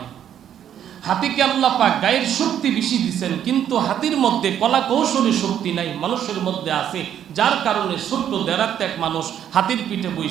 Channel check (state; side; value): quieter; left; 9.9 dB